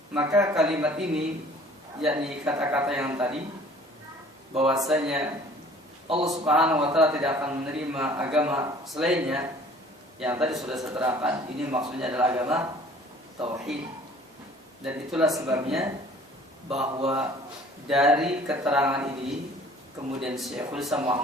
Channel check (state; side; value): normal; both; correlation 0.51